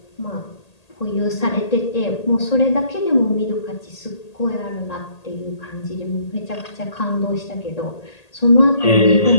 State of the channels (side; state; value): right; late; 1.8 ms